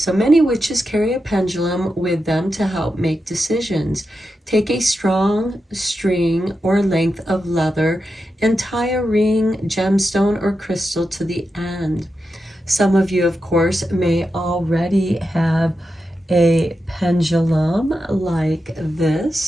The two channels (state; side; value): normal; both; correlation 0.88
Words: many witches carry a pendulum with them to help make decisions. Take a strong string or length of leather and tie a ring, gemstone, or crystal to the end. Some of you, of course, may already have a pendulum like